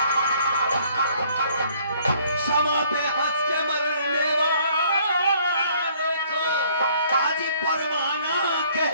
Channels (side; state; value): both; inverted; correlation -0.60